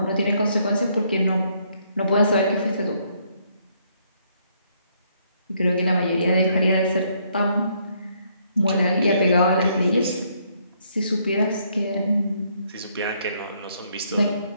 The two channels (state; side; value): inverted; both; correlation -0.70